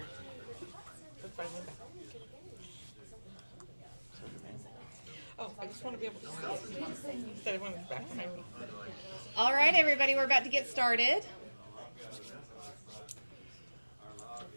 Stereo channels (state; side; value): inverted; both; correlation -1.00